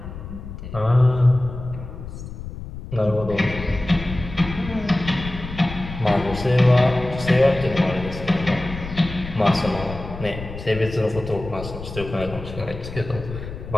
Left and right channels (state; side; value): noise; left; rumble, 11 dB below the sound